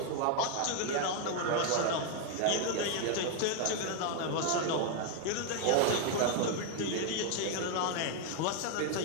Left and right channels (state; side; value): different; both; correlation 0.01